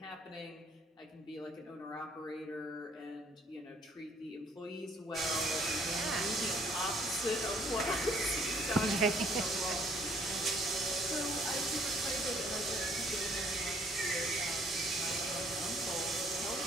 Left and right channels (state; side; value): normal; both; correlation 0.62